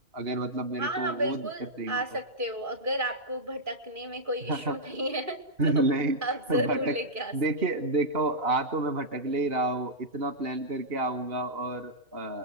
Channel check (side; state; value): left; late; 2.4 ms